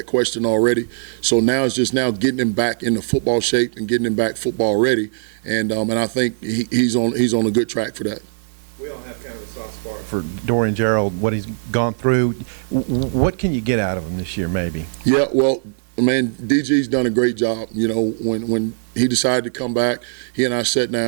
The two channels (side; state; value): left; silent; digital silence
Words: question already. So now it's just getting him back into football shape and getting him back football ready. And I think he's on a good track for that. We all have kind of a soft spot for Dorian Gerald, what he's gone through. What can you get out of him this year, maybe? Yeah, well, man, DG's done a great job. You know, when he decided to come back, he and I sat